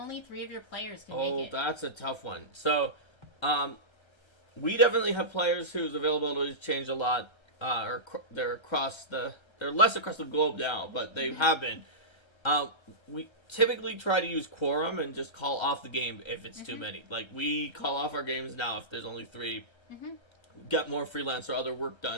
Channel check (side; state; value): right; late; 1.3 ms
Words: 3 of your players can make it? Oh, that's a tough one. So, we definitely have players whose availability has changed a lot. They're less across the globe now, but they have been. We typically try to use quorum and just call off the game if it's too many. Like, we call off our games now if there's only 3. Get more freelance or other work